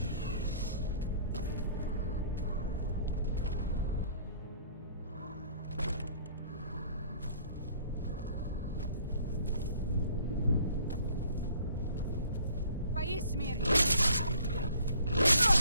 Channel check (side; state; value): both; inverted; correlation -0.55